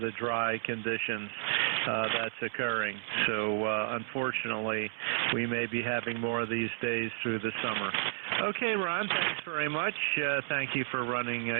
the dry conditions that's occurring. So unfortunately, we may be having more of these days through the summer. Okay, Ron, thanks very much. Thank you for running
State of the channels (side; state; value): left; silent; 57 dB below the other